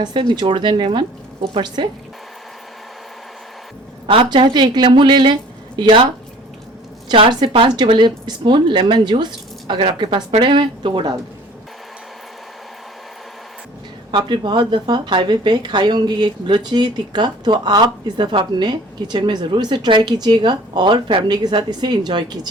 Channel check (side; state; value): both; normal; correlation 0.49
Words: से निचोड़ दें लेमन ऊपर से। आप चाहे तो 1 लेमू ले लें या 4 से 5 टेबल स्पून लेमन जूस अगर आपके पास पड़े हुए तो वो डाल दें। आपने बहुत दफ़ा हाईवे पे खाई होंगी ये बलोची टिक्का, तो आप इस दफ़ा अपने किचन में ज़रूर इसे ट्राई कीजिएगा और फैमिली के साथ इसे एंजॉय